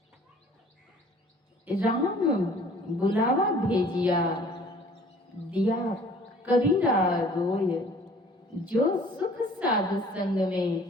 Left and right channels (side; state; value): both; normal; correlation 0.52